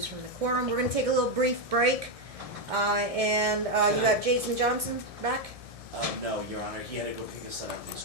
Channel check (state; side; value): late; left; 1.6 ms